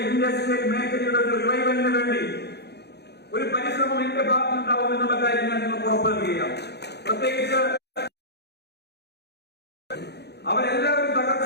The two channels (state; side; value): late; right; 0.48 ms